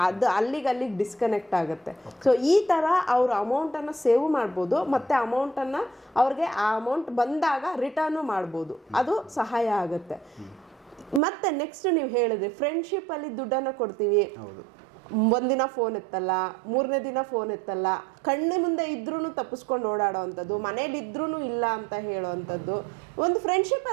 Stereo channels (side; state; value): left; drops out; at 11.2 s